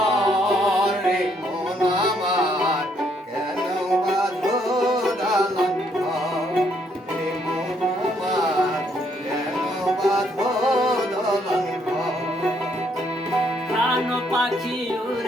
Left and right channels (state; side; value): normal; both; correlation 0.70